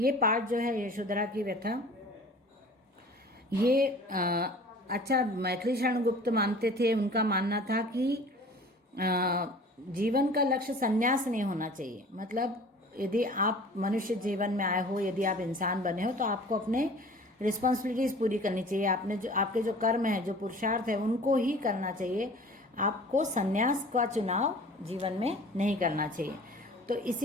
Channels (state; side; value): normal; both; correlation 0.45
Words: पार्ट जो है यशोधरा की व्यथा, ये अच्छा मैथिली शरण गुप्त मानते थे। उनका मानना था कि जीवन का लक्ष्य संन्यास नहीं होना चाहिए। मतलब यदि आप मनुष्य जीवन में आए हो, यदि आप इंसान बने हो, तो आपको अपने रिस्पॉन्सिबिलिटीज पूरी करनी चाहिए। आपके जो कर्म है, जो पुरुषार्थ है, उनको ही करना चाहिए। आपको संन्यास का चुनाव जीवन में नहीं करना चाहिए। तो